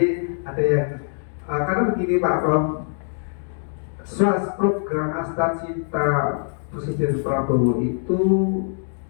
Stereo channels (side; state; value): right; silent; 63 dB below the other